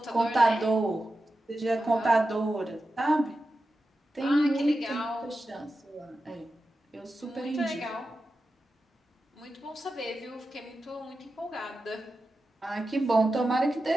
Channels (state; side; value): normal; both; correlation 0.92